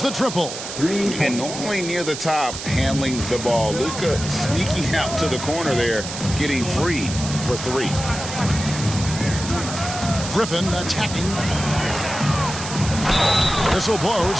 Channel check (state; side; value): noise; right; hiss, 8 dB below the sound